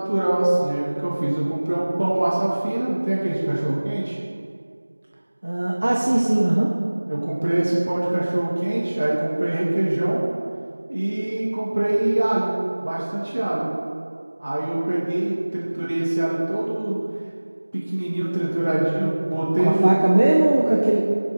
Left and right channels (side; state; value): both; inverted; correlation -1.00